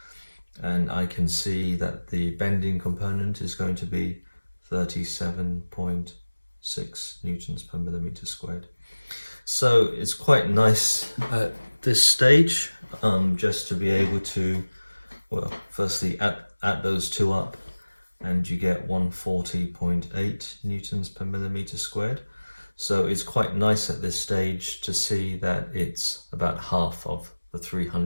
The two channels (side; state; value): both; inverted; correlation -1.00